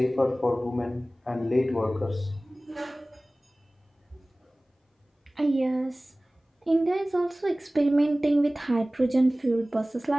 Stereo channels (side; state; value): both; normal; correlation 0.98